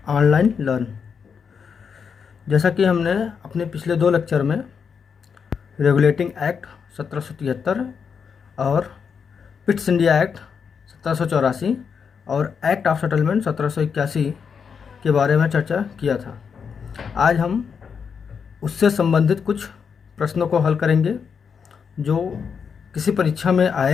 online learn. जैसा कि हमने अपने पिछले दो लेक्चर में रेगुलेटिंग एक्ट 1773 और पिट्स इंडिया एक्ट 1784 और एक्ट ऑफ सेटलमेंट 1781 के बारे में चर्चा किया था। आज हम उससे संबंधित कुछ प्रश्नों को हल करेंगे जो किसी परीक्षा में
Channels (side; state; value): right; quieter; 6.4 dB